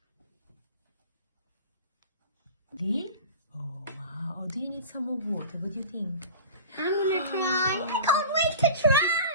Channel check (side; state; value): both; inverted; correlation -0.37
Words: bit. Oh, wow. Oh, do you need some more water? What do you think? I'm gonna try. I can't wait to